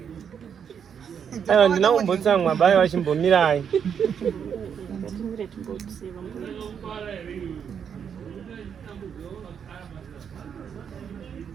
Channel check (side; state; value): left; quieter; 7.6 dB